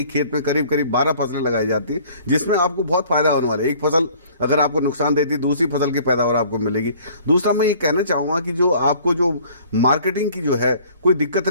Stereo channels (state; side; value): inverted; both; correlation -0.53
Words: खेत में करीब 12 फसलें लगाई जाती है, जिसमें आपको बहुत फायदा होने वाला है। एक फसल अगर आपको नुकसान देती है, दूसरी फसल की पैदावार आपको मिलेगी। दूसरा मैं ये कहना चाहूंगा कि जो आपको जो मार्केटिंग की जो है कोई दिक्कत